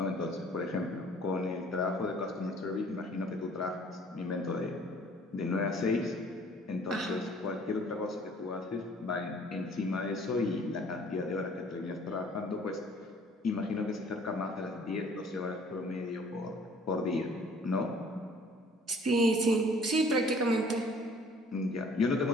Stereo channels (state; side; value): normal; both; correlation 0.55